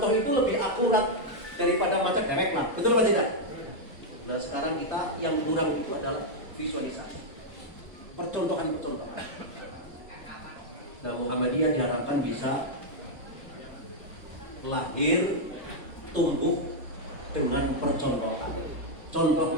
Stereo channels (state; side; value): normal; both; correlation -0.02